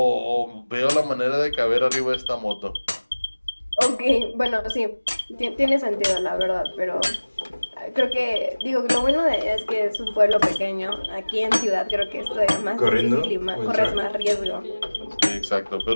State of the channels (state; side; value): inverted; both; correlation -1.00